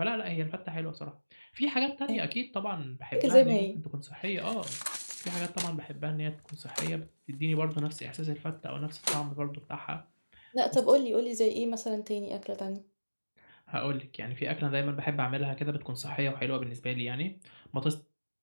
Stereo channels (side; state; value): both; inverted; correlation -1.00